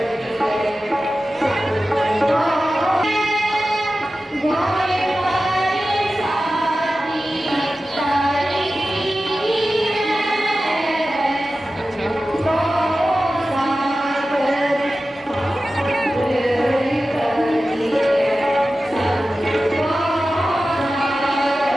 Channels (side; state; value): both; normal; correlation 0.94